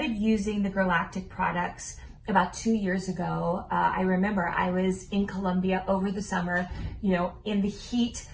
using the Girlactik products about 2 years ago. I remember I was in Colombia over the summer, you know, in the heat,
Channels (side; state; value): both; identical; correlation 1.00